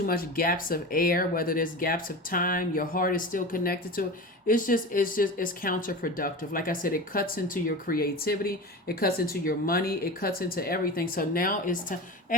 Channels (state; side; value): normal; both; correlation 0.29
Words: much gaps of air, whether there's gaps of time, your heart is still connected to it. It's counterproductive. Like I said, it cuts into your creativity. It cuts into your money. It cuts into everything. So now it's time,